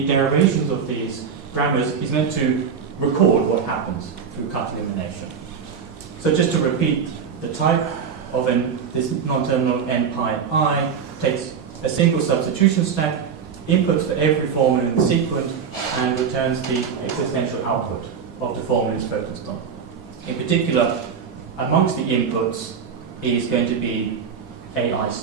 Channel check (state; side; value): quieter; left; 6.8 dB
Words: derivations of these grammars is meant to record what happens through cut-elimination. So just to repeat, the type of this non-terminal n pi I takes a single substitution stack, inputs for every formula in the sequence, and returns the existential output of the formula it's focused on. In particular, amongst the inputs is going to be AI